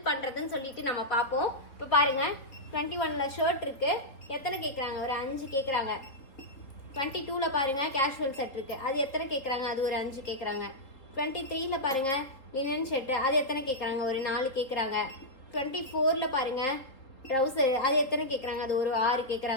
பண்றதுன்னு சொல்லிட்டு நம்ம பார்ப்போம். இப்போ பாருங்க, 21ல ஷர்ட் இருக்கு. எத்தனை கேட்குறாங்க? ஒரு 5 கேட்குறாங்க. 22ல பாருங்க கேஷுவல் செட் இருக்கு. அது எத்தனை கேட்குறாங்க? அது ஒரு 5 கேட்குறாங்க. 23ல பாருங்க லினன் ஷர்ட். அது எத்தனை கேட்குறாங்க? ஒரு 4 கேட்குறாங்க. 24ல பாருங்க ட்ரௌசர். அது எத்தனை கேட்குறாங்க? அது ஒரு 6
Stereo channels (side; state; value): right; late; 3.7 ms